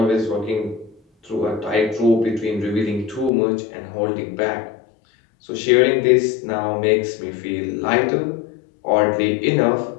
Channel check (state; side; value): drops out; right; at 3.3 s